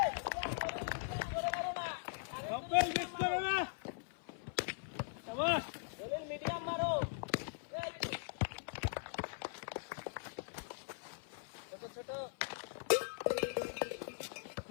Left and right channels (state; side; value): silent; right; 51 dB below the other